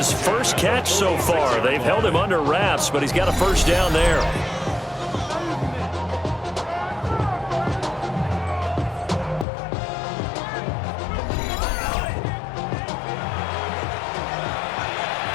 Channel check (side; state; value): right; drops out; at 9.5 s